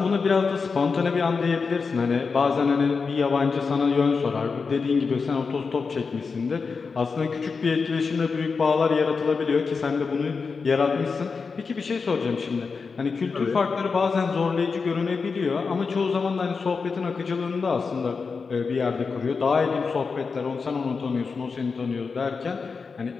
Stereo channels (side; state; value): right; quieter; 4.9 dB